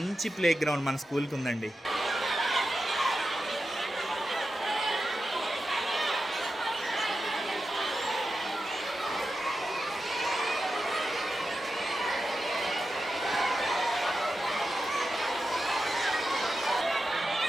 ప్లే గ్రౌండ్ మన స్కూల్కి ఉందండి.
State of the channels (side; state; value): both; normal; correlation 0.90